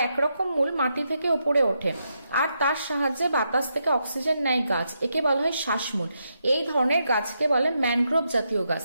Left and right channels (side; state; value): both; inverted; correlation -0.82